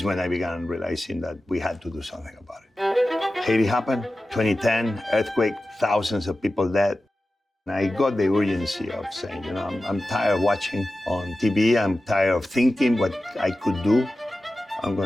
when I began realizing that we had to do something about it. Haiti happened, 2010, earthquake, thousands of people dead. And I got the urgency of saying, you know, I'm tired of watching on TV, I'm tired of thinking what I could do. I'm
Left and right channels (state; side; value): normal; both; correlation 0.94